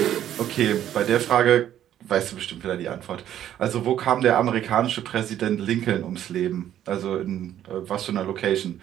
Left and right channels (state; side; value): quieter; left; 11.2 dB